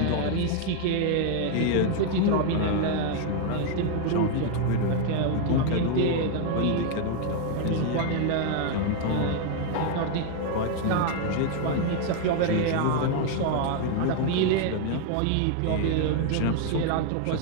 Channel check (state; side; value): different; both; correlation 0.01